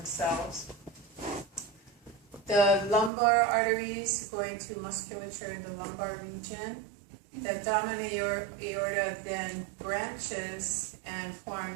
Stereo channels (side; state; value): left; drops out; at 3.1 s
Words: The lumbar arteries going to musculature in the lumbar region. The abdominal aorta then branches and